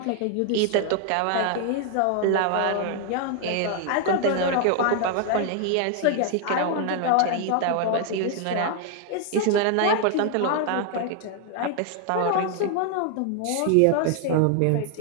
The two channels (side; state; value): both; different; correlation 0.00